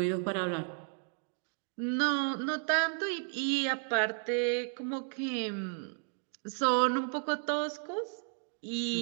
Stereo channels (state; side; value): silent; left; 56 dB below the other